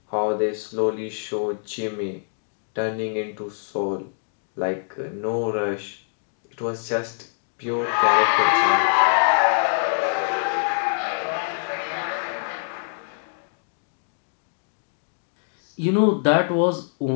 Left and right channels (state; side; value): silent; right; digital silence